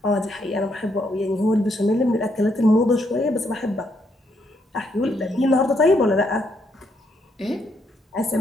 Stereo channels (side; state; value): both; normal; correlation 0.75